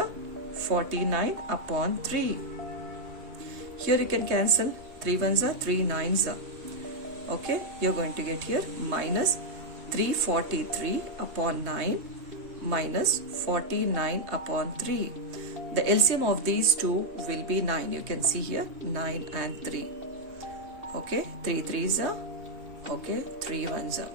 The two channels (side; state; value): left; late; 3.2 ms